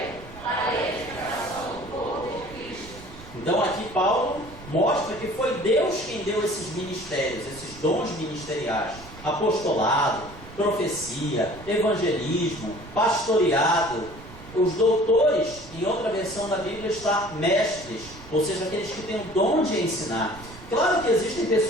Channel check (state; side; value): noise; right; rumble, 17 dB below the sound